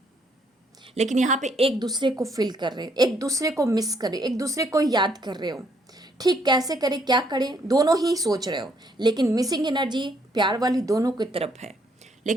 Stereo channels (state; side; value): normal; both; correlation 0.69